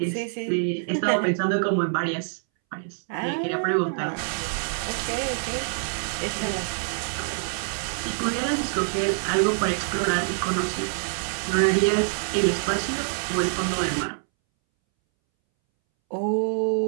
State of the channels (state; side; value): silent; left; 61 dB below the other